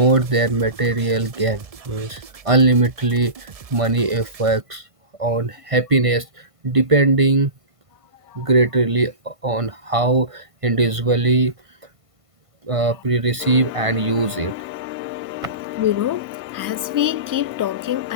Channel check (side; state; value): left; late; 1.5 ms